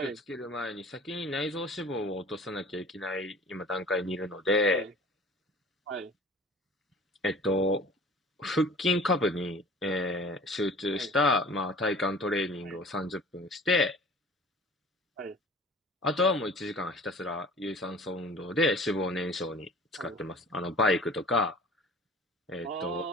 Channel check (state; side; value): normal; both; correlation 0.45